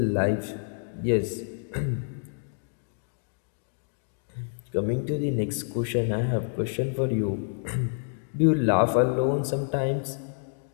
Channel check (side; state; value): right; silent; digital silence